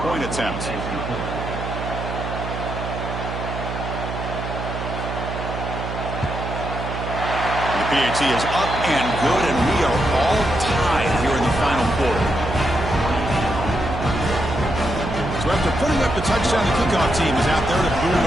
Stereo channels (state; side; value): noise; right; hum, 6 dB below the sound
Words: point attempt. The PAT is up and good, and we are all tied here in the final quarter. So after putting up the touchdown, the kickoff team is out there to boot it